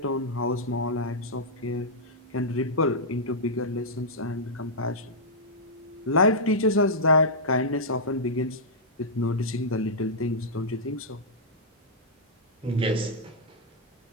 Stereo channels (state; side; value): normal; both; correlation -0.09